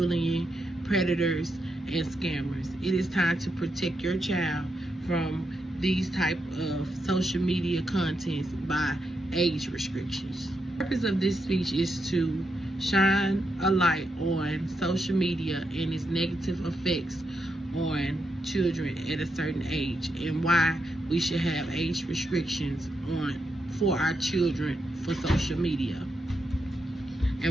predators, and scammers. It is time to protect your child from these type of social media contents by age restrictions. The purpose of this speech is to shine a light on social media and its negative effects on children at a certain age, and why we should have age restrictions for our children for social media,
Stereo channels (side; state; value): both; normal; correlation 0.83